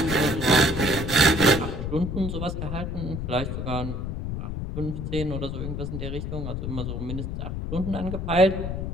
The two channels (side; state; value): left; noise; rumble, 4 dB below the sound